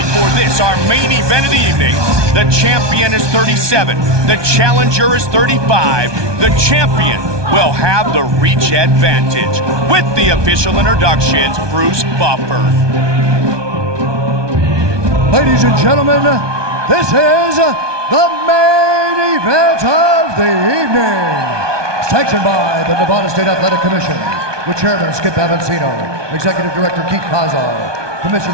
for this, our main event of the evening. The champion is 37. The challenger is 35. The champion will have the reach advantage. With the official introductions, Bruce Buffer. Ladies and gentlemen, this is the main event of the evening. Sanctioned by the Nevada State Athletic Commission, with Chairman Skip Avancino, Executive Director Keith Kazar,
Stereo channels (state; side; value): late; left; 1.2 ms